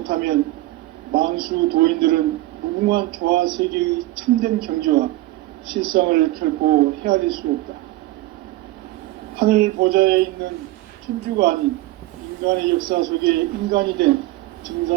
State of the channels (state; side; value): quieter; left; 17.7 dB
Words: 만수 도인들은 무궁한 조화세계의 참된 경지와 실상을 결코 헤아릴 수 없다. 하늘 보좌에 있는 천주가 아닌 인간의 역사 속에 인간이 된